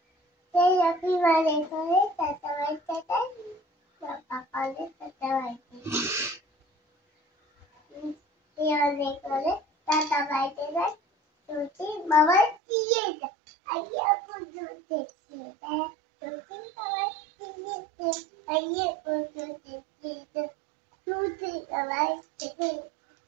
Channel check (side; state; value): left; drops out; at 12.6 s